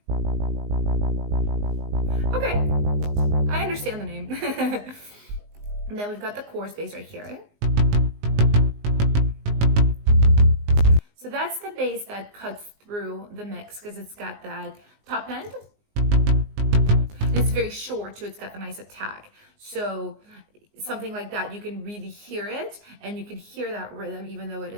Okay, I understand the name. And then we've got the chorus bass right here. So that's the bass that cuts through the mix because it's got that top end. And it's very short too, it's got the nice attack. So something like that, you can really hear it and you can hear that rhythm even though it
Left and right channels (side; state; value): left; late; 19 ms